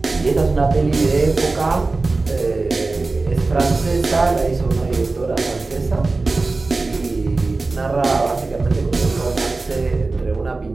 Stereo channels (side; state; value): left; quieter; 3.5 dB